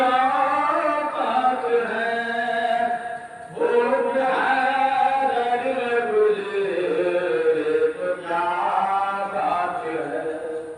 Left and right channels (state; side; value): identical; both; correlation 1.00